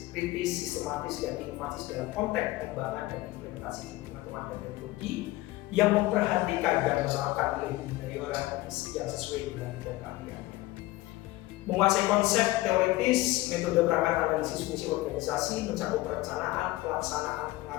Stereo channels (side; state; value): right; quieter; 18.7 dB